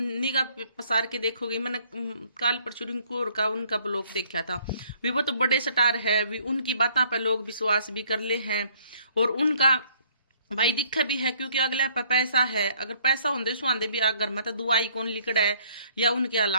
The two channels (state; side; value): inverted; both; correlation -0.62